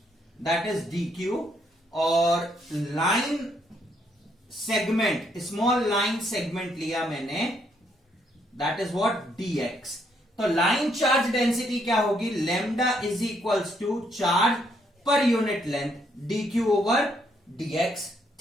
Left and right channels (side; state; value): both; normal; correlation 0.72